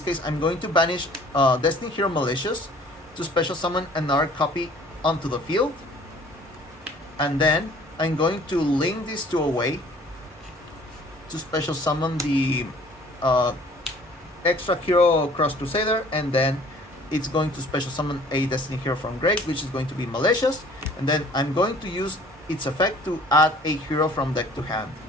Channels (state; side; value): normal; both; correlation 0.53